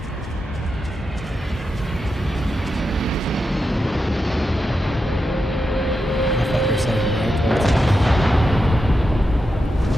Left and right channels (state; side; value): normal; both; correlation 0.88